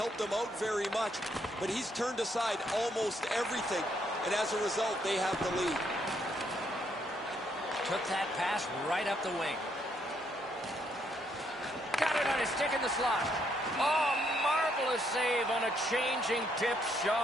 him out very much, but he's turned aside almost everything, and as a result, they have the lead. Took that pass right up the wing. Got it on his stick in the slot. Oh, marvelous save on a changing tip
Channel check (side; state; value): both; normal; correlation 0.73